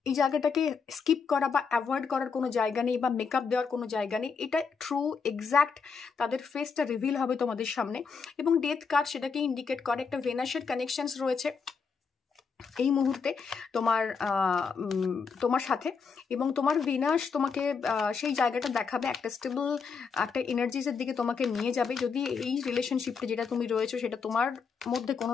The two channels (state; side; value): quieter; right; 5.5 dB